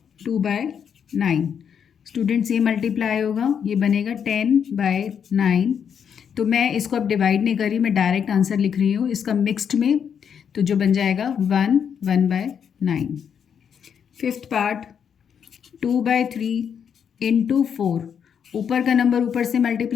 2/9। स्टूडेंट्स ये मल्टीप्लाई होगा, ये बनेगा 10/9। तो मैं इसको अब डिवाइड नहीं कर रही, मैं डायरेक्ट आंसर लिख रही हूँ इसका मिक्स्ड में, तो जो बन जाएगा 1/9। Fifth part 2/3 × 4। ऊपर का नंबर ऊपर से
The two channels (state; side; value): quieter; right; 7.7 dB